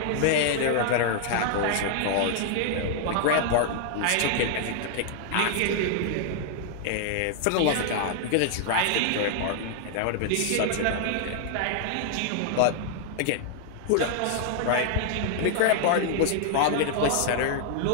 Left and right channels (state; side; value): different; both; correlation -0.01